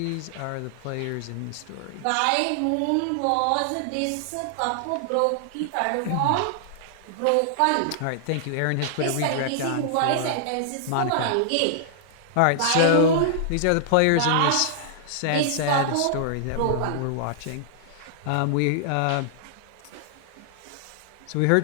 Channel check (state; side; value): different; both; correlation -0.01